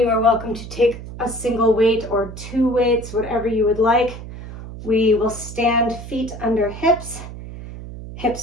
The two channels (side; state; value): right; noise; hum, 12 dB below the sound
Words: are welcome to take a single weight or 2 weights, whatever you would like. We will stand feet under hips,